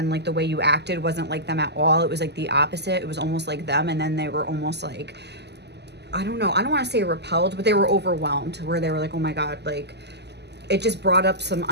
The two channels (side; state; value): left; late; 0.50 ms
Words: like, the way you acted wasn't like them at all. It was like the opposite. It was almost like them. And then they were almost like, I don't know. I don't want to say repelled, but they were overwhelmed, where they were like, oh my God, like, it just brought up some